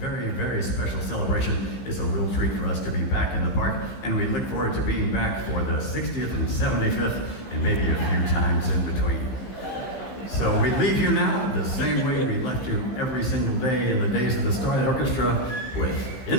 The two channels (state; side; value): late; right; 16 ms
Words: very special celebration. It's a real treat for us to be back in the park, and we look forward to being back for the 60th and 75th, and maybe a few times in between. So we leave you now the same way we left you every single day in the days of the Starlight Orchestra with